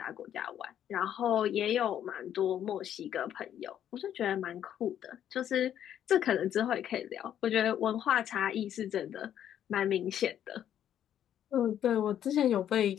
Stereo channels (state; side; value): quieter; right; 10.3 dB